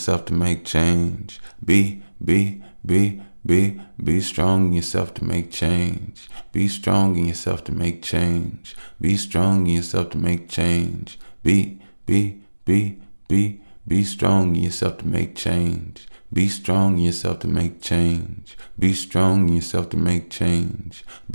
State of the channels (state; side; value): inverted; both; correlation -1.00